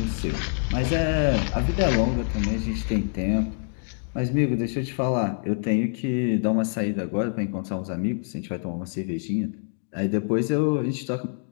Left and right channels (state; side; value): silent; right; 61 dB below the other